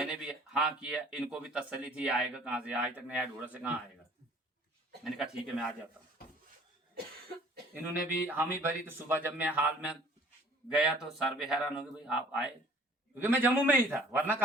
भी हाँ किया। इनको भी तसल्ली थी आएगा कहाँ से, आज तक नया ढूंढा से कहाँ आएगा। मैंने कहा ठीक है मैं आ जाता हूँ। इन्होंने भी हामी भरी। तो सुबह जब मैं हाल में गया तो सर भी हैरान हो गए, भाई आप आए, क्योंकि मैं जम्मू में ही था, वरना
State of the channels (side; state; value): both; normal; correlation 0.53